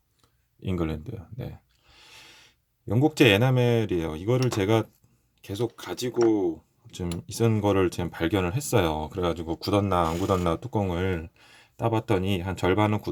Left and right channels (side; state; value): both; identical; correlation 1.00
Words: 잉글랜드. 네. 영국제 에나멜이에요. 이거를 제가 계속 가지고 좀 있은 거를 지금 발견을 했어요. 그래가지고 굳었나 안 굳었나 뚜껑을 따봤더니 한 절반은